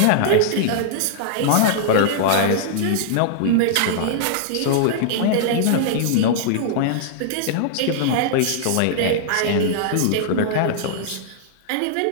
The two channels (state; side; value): different; both; correlation -0.01